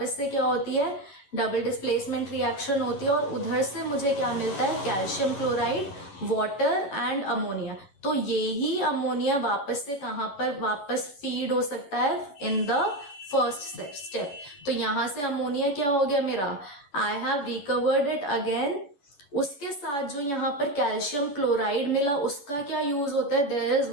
से क्या होती है? डबल डिस्प्लेसमेंट रिएक्शन होती है, और उधर से मुझे क्या मिलता है? Calcium chloride, water and ammonia. तो यही अमोनिया वापस से कहां पर वापस फीड हो सकता है? In the first step. तो यहां से अमोनिया क्या हो गया मेरा? I have recovered it again. उसके साथ जो यहाँ पर कैल्शियम क्लोराइड मिला उसका क्या यूज होता है? There is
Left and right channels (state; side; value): late; right; 10 ms